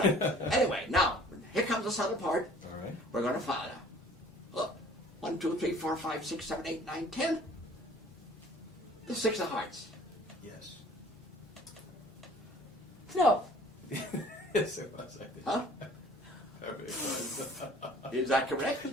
Anyway, now here comes the subtle part. All right. We're going to follow. Look, 1, 2, 3, 4, 5, 6, 7, 8, 9, 10. The 6 of hearts. Yes. No. Yes, it was. I think. Huh? It was. Is that correct?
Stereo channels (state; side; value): normal; both; correlation 0.52